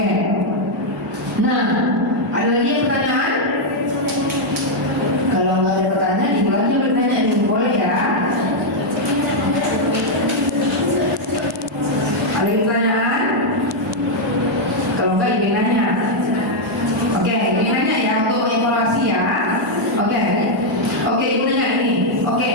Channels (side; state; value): both; normal; correlation -0.02